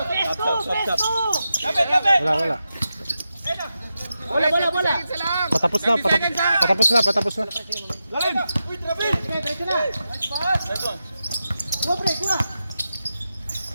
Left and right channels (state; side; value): inverted; both; correlation -0.90